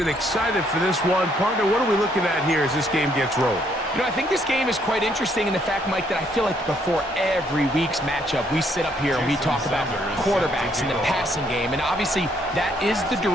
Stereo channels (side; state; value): both; normal; correlation 0.69